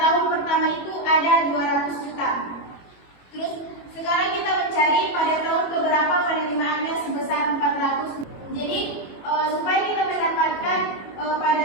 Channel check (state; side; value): late; right; 22 ms